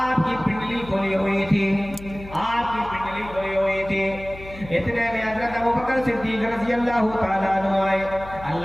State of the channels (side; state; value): left; noise; hum, 15 dB below the sound